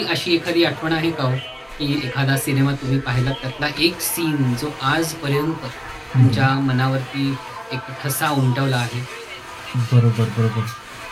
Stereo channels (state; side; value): identical; both; correlation 1.00